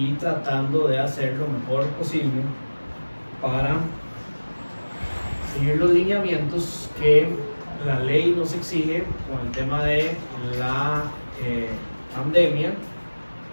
tratando de hacer lo mejor posible para seguir los lineamientos que la ley nos exige con el tema de la pandemia,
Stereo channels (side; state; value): both; inverted; correlation -1.00